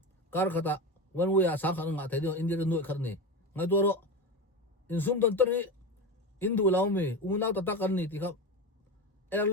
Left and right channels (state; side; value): normal; both; correlation 0.22